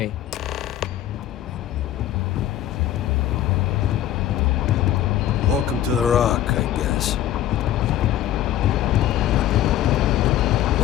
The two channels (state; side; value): quieter; right; 12.2 dB